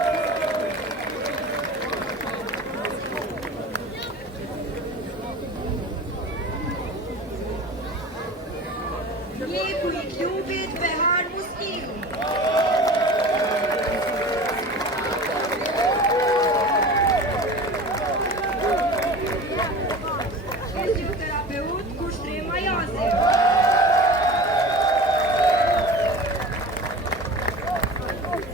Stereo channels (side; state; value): both; normal; correlation 0.36